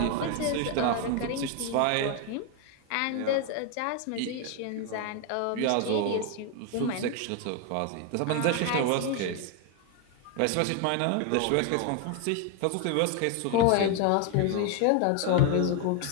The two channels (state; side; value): different; both; correlation 0.01